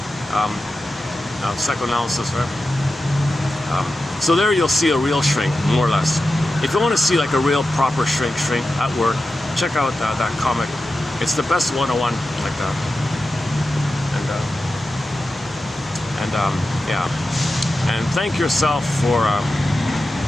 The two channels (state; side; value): normal; both; correlation 0.92